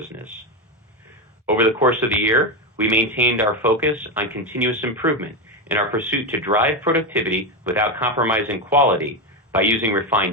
Over the course of the year, we maintained our focus on continuous improvement in our pursuit to drive productivity without compromising quality by using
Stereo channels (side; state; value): both; normal; correlation 0.12